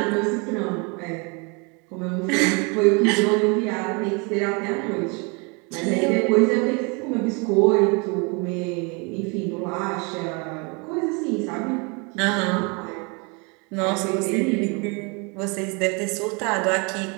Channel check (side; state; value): left; quieter; 31.3 dB